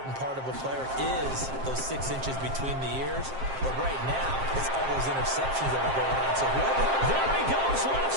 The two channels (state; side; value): late; left; 7.5 ms